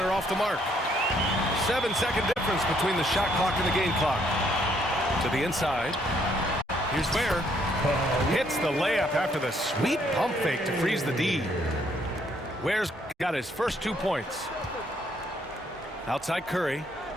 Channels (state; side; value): normal; both; correlation 0.69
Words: off the mark. 7-second difference between the shot clock and the game clock. To the inside. Here's Ware. Hits the layup after the sweet pump fake to freeze the D. Ware's got his first 2 points. Outside Curry.